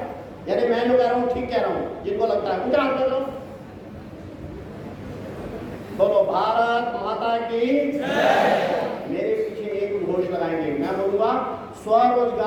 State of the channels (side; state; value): both; identical; correlation 1.00